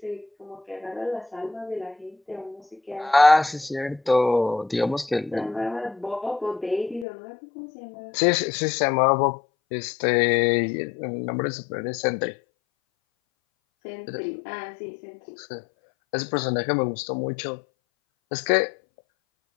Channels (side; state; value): right; drops out; at 7.1 s